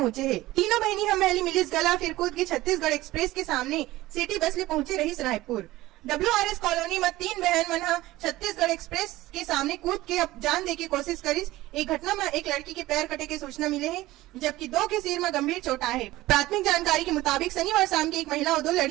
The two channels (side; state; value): left; quieter; 17.4 dB